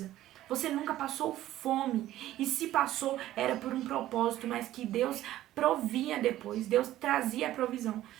Você nunca passou fome. E se passou, era por um propósito, mas que Deus provia depois. Deus trazia a provisão.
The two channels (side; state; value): left; quieter; 14.1 dB